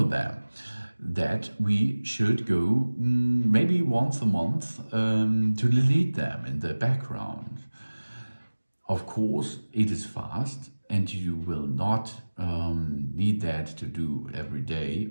them, that we should go maybe once a month to delete them in the background. Of course, it is fast and you will not need that to do every day,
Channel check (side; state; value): both; inverted; correlation -1.00